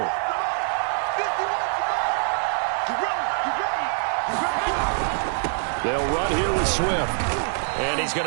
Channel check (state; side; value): silent; left; 56 dB below the other